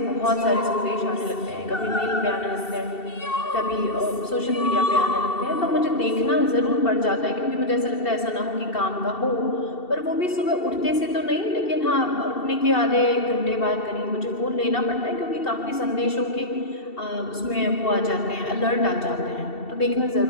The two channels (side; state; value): right; late; 2.7 ms